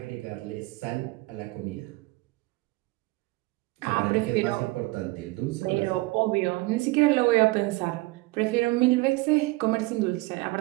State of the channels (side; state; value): left; quieter; 22.2 dB